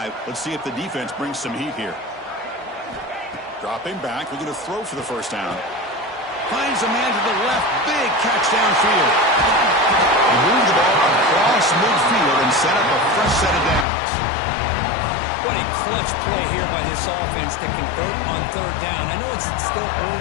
Let's see if the defense brings some heat here. Dropping back. Looking to throw for the 1st down. Finds a man to the left. Big catch downfield. He moved the ball across midfield and set up a fresh set of downs. What a clutch play here by this offense to convert on 3rd down. I know it's still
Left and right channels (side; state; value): right; drops out; at 13.9 s